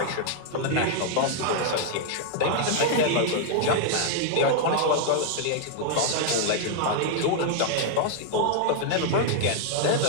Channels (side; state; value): both; different; correlation -0.01